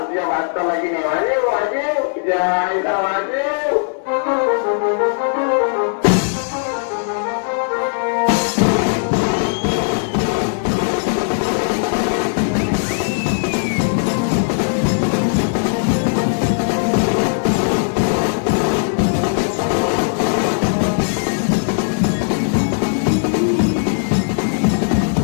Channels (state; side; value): silent; right; 61 dB below the other